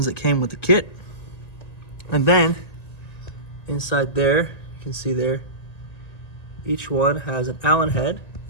that came with the kit, and then inside there, you can see there, each one has an Allen head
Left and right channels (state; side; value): late; right; 1.9 ms